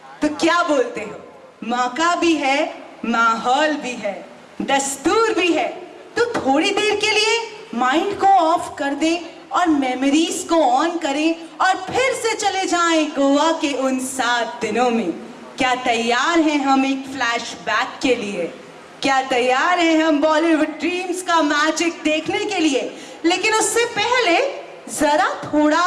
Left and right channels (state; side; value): identical; both; correlation 1.00